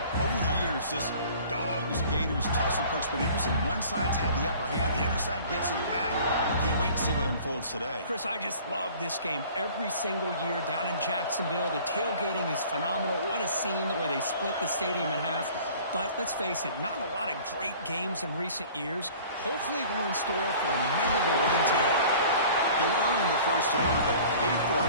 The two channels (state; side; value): inverted; both; correlation -0.47